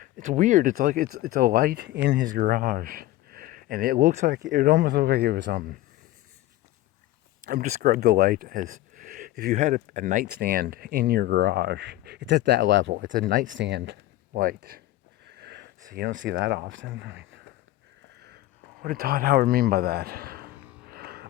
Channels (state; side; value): quieter; right; 15.9 dB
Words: It's weird. It's like it's a light in his garage, and it almost looked like it was I'm describe the light as if you had a nightstand in your garage. It's at that level. It's a nightstand light. So you don't see that often. I mean, what did Todd Howard mean by that?